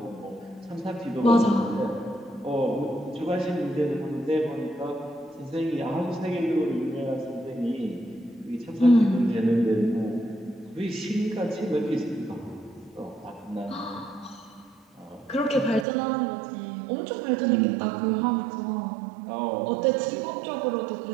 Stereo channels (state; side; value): drops out; left; at 15.9 s